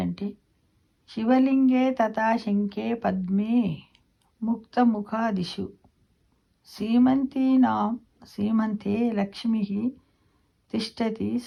శివలింగే తథా శంఖే పద్మే ముక్తముఖాదిషు సీమంతే లక్ష్మి తిష్టతి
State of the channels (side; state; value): both; identical; correlation 1.00